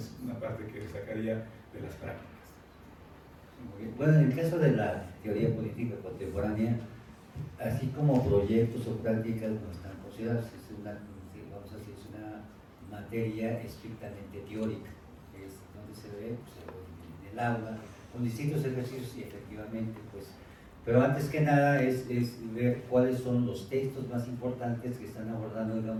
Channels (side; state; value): both; identical; correlation 1.00